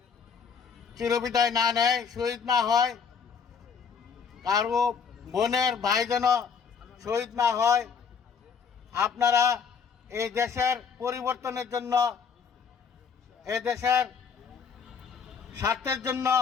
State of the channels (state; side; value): quieter; right; 6.3 dB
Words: চিরবিদায় না নেয়, শহীদ না হয়, কারো বোনের ভাই যেন শহীদ না হয়। আপনারা এই দেশের পরিবর্তনের জন্য, এই দেশের স্বার্থের জন্য,